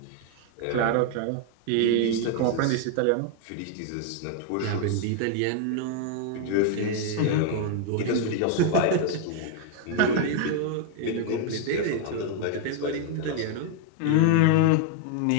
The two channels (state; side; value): different; both; correlation 0.00